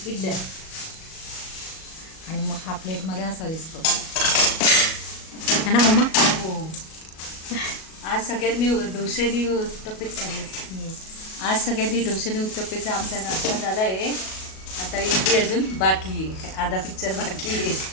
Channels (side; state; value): right; late; 37 ms